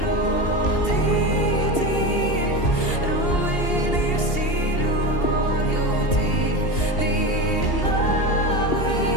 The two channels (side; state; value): right; late; 2.8 ms